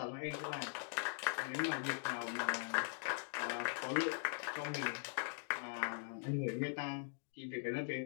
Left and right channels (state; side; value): silent; right; digital silence